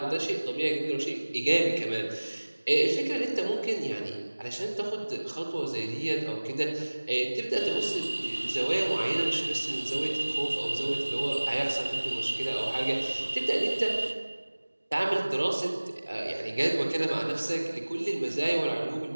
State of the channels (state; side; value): inverted; both; correlation -1.00